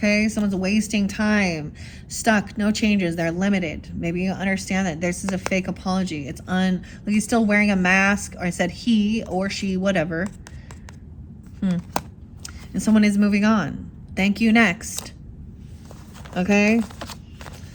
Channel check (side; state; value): both; identical; correlation 1.00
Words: someone's wasting time. Stuck, no changes, they're limited. Maybe you understand that this is a fake apology. It's like he's still wearing a mask, or I said he or she, whatever. And someone is moving on. Thank you, next. Okay?